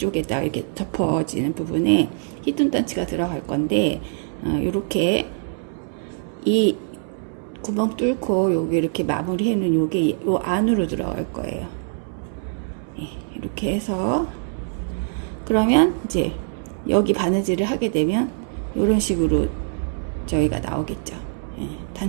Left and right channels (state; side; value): silent; left; 63 dB below the other